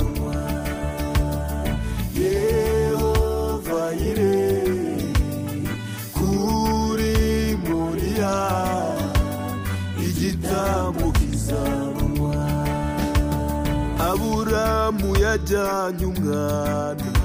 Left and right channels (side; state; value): both; identical; correlation 1.00